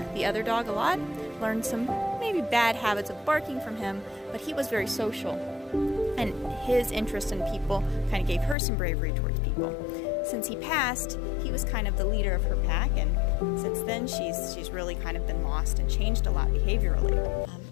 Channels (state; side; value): drops out; right; at 8.6 s